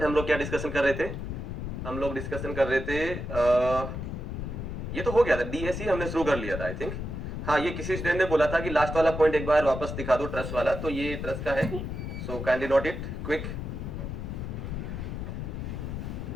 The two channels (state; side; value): noise; left; rumble, 5 dB below the sound